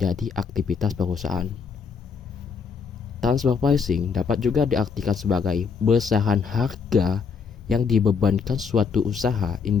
aktivitas perusahaan. Transfer pricing dapat juga diartikan sebagai besaran harga yang dibebankan suatu usaha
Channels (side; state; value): right; quieter; 5.8 dB